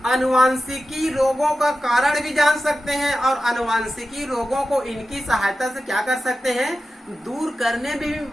आनुवांशिकी रोगों का कारण भी जान सकते हैं और आनुवांशिकी रोगों को इनकी सहायता से क्या कर सकते हैं, दूर करने में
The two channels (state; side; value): normal; both; correlation 0.93